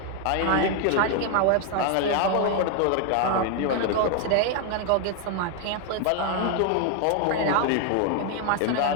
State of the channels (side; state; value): both; different; correlation 0.01